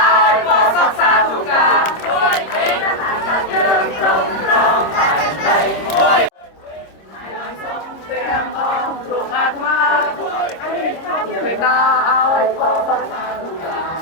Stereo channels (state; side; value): late; right; 26 ms